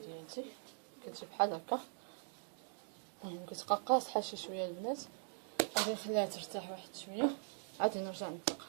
ديالتي كتجي بحال هكا. المهم كتبقى قاصحه شي شويه البنات، غادي نخليها ترتاح واحد شويه عاد نرجع نطلقها.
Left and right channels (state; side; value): silent; left; digital silence